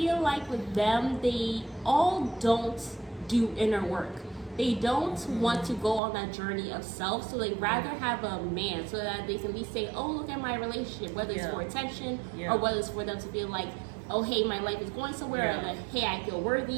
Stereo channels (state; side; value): drops out; left; at 6.0 s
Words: like with them, they all don't do inner work. They don't want to go on that journey of self, so they rather have a man so that they can be saying, "Oh, look at my relationship," whether it's for attention or whether it's for them to feel like, "Oh, hey, my life is going somewhere," or like, "Hey, I feel